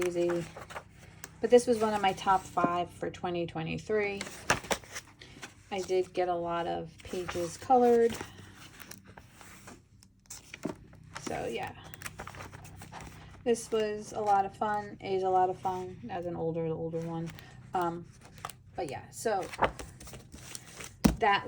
But this was one of my top 5 for 2023. I did get a lot of pages colored. So yeah, this was a lot of fun. It is a lot of fun as an older one. But yeah, so that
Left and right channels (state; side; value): identical; both; correlation 1.00